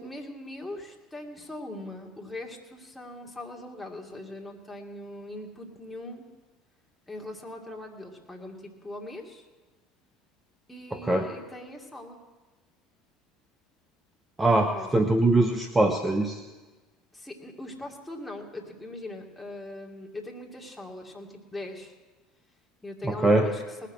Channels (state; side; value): normal; both; correlation 0.79